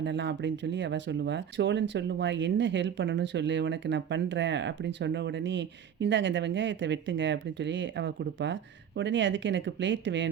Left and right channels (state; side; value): quieter; left; 8.6 dB